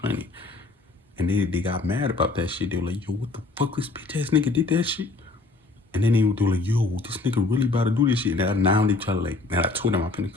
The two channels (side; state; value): right; quieter; 3.5 dB